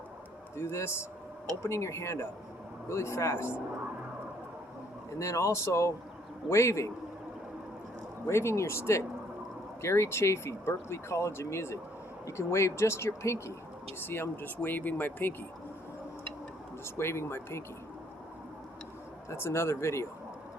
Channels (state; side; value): normal; both; correlation 0.65